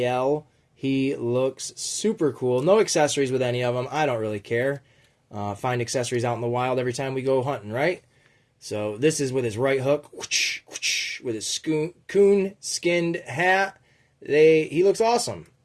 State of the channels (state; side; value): identical; both; correlation 1.00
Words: He looks super cool. No accessories with any of them. I don't really care. Find accessories out in the wild every time we go hunting, right? So this is with his right hook, whoosh, whoosh, with his coon skinned hat. He looks awesome.